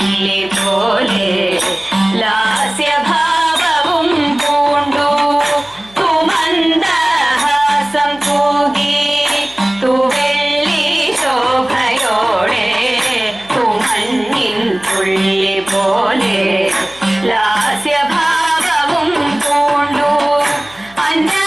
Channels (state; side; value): noise; left; hum, 26 dB below the sound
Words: പോലെ ലാസ്യഭാവവും പൂണ്ടു. തു മന്ദഹാസം തൂകി തു വെള്ളി ശോഭയോടെ തു മഞ്ഞിൻ തുള്ളി പോലെ ലാസ്യഭാവവും പൂണ്ടു.